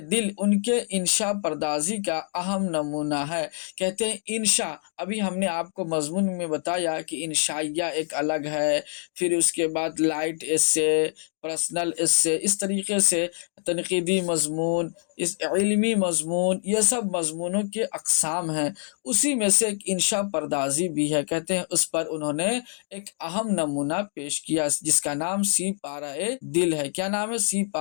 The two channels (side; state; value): right; silent; 58 dB below the other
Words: دل ان کے انشاء پردازی کا اہم نمونہ ہے۔ کہتے ہیں انشاء، ابھی ہم نے آپ کو مضمون میں بتایا کہ انشائیہ ایک الگ ہے، پھر اس کے بعد لائٹ ایسے، پرسنل ایسے، اس طریقے سے تنقیدی مضمون، اس علمی مضمون، یہ سب مضمونوں کے اقسام ہیں، اسی میں سے ایک انشاء پردازی بھی ہے۔ کہتے ہیں اس پر انہوں نے ایک اہم نمونہ پیش کیا، جس کا نام سی پارہ دل ہے۔ کیا نام ہے؟ سی